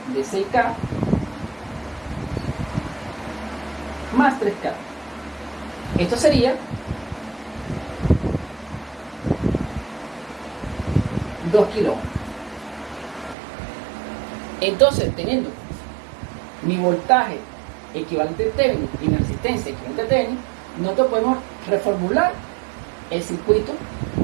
de 6K más 3K. Esto sería 2 kilo ohm. Entonces, teniendo mi voltaje equivalente a Thevenin y mi resistencia equivalente a Thevenin, nosotros podemos reformular el circuito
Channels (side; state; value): left; drops out; at 13.4 s